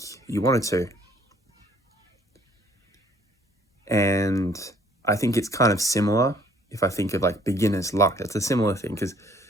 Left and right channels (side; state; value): both; normal; correlation 0.59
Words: you wanted to. And I think it's kind of similar if I think of like beginner's luck. It's a similar thing because